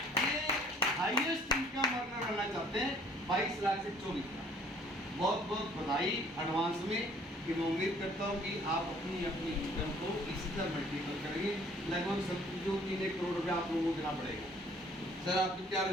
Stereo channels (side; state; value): both; normal; correlation 0.57